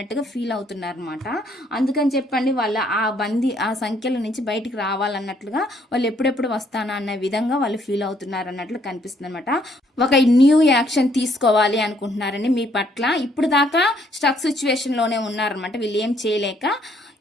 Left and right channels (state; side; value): normal; both; correlation 0.67